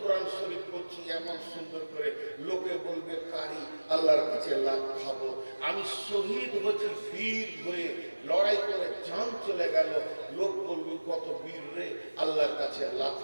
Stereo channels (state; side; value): inverted; both; correlation -1.00